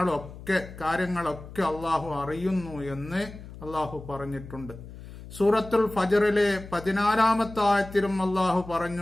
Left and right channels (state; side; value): noise; left; hum, 15 dB below the sound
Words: കാര്യങ്ങളൊക്കെ അല്ലാഹു അറിയുന്നു എന്ന് അല്ലാഹു പറഞ്ഞിട്ടുണ്ട്. സൂറത്തുൽ ഫജ്റിലെ 14-ാമത്തെ ആയത്തിലും അല്ലാഹു